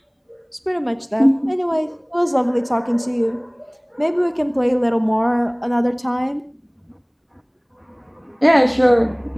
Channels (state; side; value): identical; both; correlation 1.00